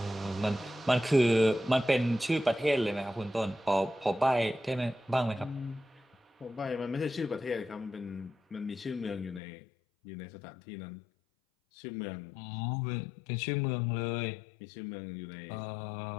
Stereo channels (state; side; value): drops out; right; at 9.4 s